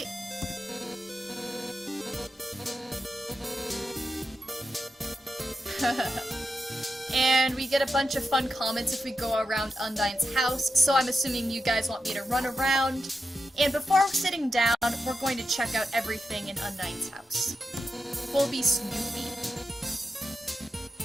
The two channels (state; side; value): normal; both; correlation 0.87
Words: And we get a bunch of fun comments if we go around Undyne's house, so I'm assuming you guys want me to run around. And before sitting down, we're going to check out everything in Undyne's house. We'll be Snoopy.